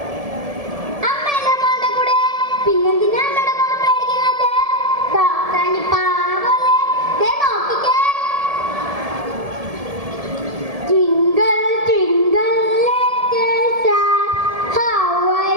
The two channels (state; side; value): late; left; 1.7 ms